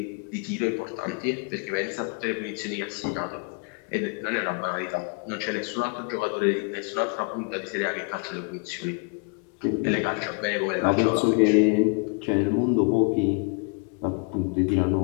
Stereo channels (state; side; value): quieter; right; 35.1 dB